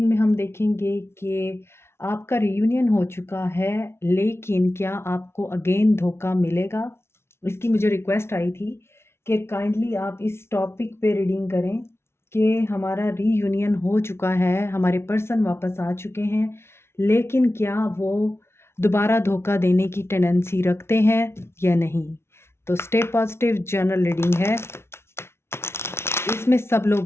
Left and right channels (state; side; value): late; right; 0.12 ms